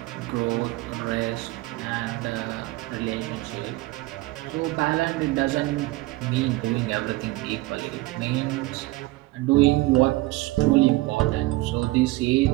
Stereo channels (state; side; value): quieter; left; 20.2 dB